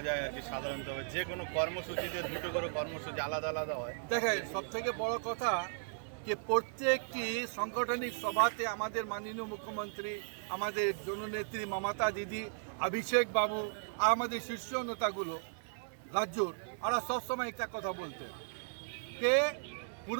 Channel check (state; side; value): silent; left; digital silence